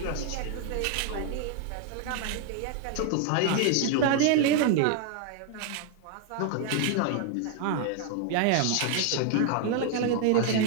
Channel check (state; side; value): different; both; correlation 0.00